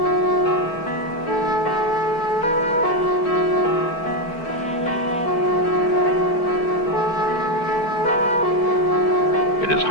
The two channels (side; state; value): right; late; 4.4 ms